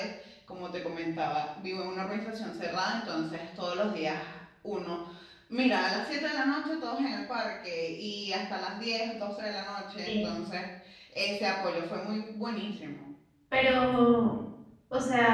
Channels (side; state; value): both; identical; correlation 1.00